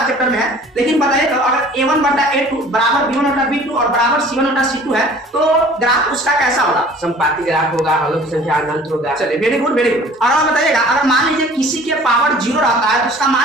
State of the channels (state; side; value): normal; both; correlation 0.49